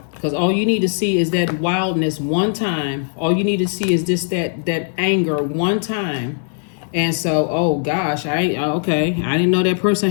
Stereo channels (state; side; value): silent; right; 55 dB below the other